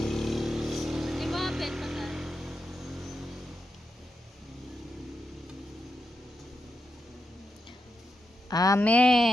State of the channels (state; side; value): normal; both; correlation 0.86